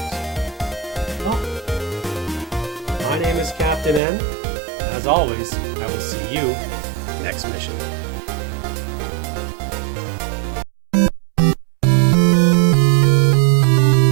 Well, my name is Captain N. As always, I will see you next mission.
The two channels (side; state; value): left; drops out; at 4.0 s